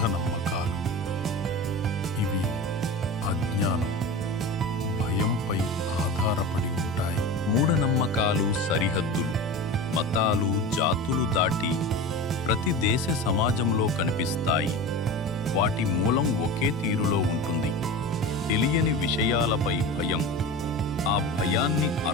ఇవి అజ్ఞానం, భయంపై ఆధారపడి ఉంటాయి. మూఢనమ్మకాలు సరిహద్దులు, మతాలు, జాతులు దాటి ప్రతి దేశ సమాజంలో కనిపిస్తాయి. వాటి మూలం ఒకే తీరులో ఉంటుంది. తెలియని విషయాలపై భయం, ఆ భయాన్ని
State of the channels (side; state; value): both; normal; correlation 0.29